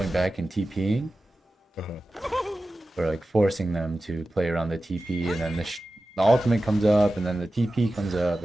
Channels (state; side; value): normal; both; correlation 0.94